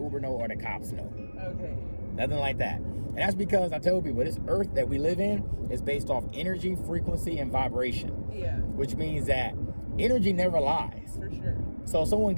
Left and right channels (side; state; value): both; inverted; correlation -1.00